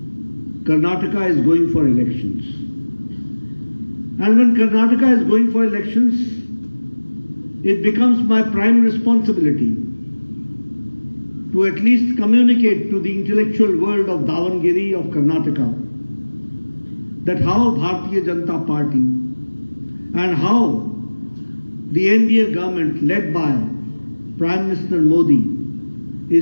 Karnataka is going for elections. And when Karnataka is going for elections, it becomes my prime responsibility to at least communicate to the intellectual world of Davanagere, of Karnataka, that how Bharatiya Janata Party and how the NDA government led by Prime Minister Modi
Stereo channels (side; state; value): both; inverted; correlation -1.00